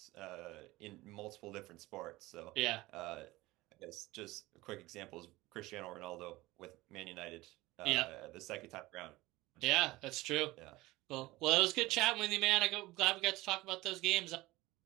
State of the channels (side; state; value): left; quieter; 19.5 dB